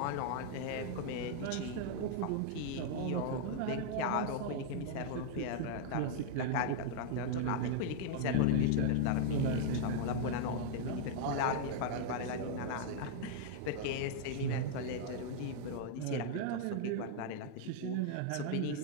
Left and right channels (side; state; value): both; different; correlation -0.01